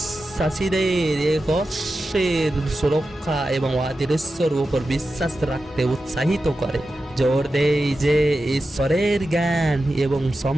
এক অশ্বের সুরক্ষা এবং অদৃশ্যর উপর বিশ্বাস রাখতে উৎসাহিত করে। জোর দেয় যে ঈশ্বরের জ্ঞান এবং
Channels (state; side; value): normal; both; correlation 0.92